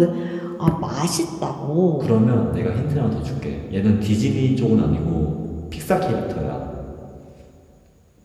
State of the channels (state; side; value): identical; both; correlation 1.00